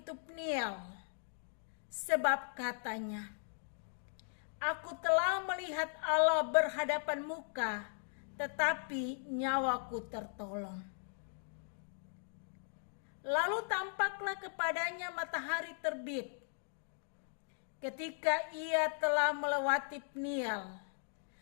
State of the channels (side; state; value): right; silent; digital silence